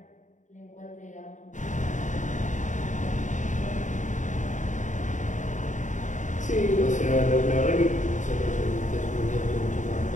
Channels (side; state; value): right; late; 0.36 ms